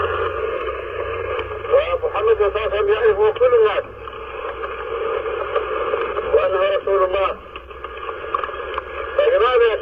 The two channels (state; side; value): identical; both; correlation 1.00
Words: ومحمد صلى الله عليه وسلم يعرفه كل الناس، وأنه رسول الله. فلماذا